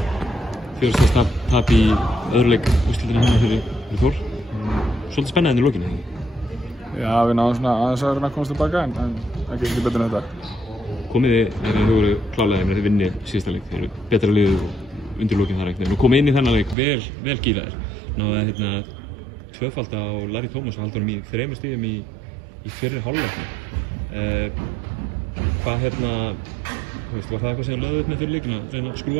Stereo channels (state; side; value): drops out; left; at 16.8 s